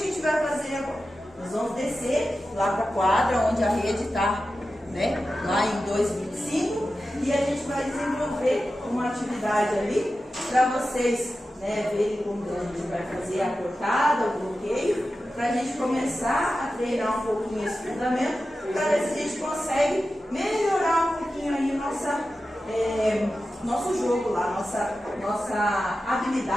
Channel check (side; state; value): both; normal; correlation 0.93